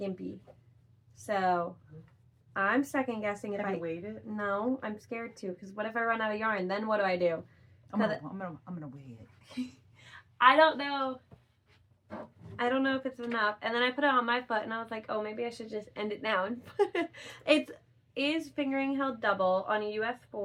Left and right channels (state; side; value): identical; both; correlation 1.00